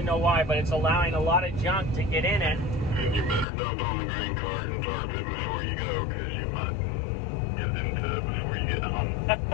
know why, but it's allowing a lot of junk to get in it. And you better dump on the grain cart and tarp it before you go, because you might get into it before you get home.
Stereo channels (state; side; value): drops out; right; at 3.5 s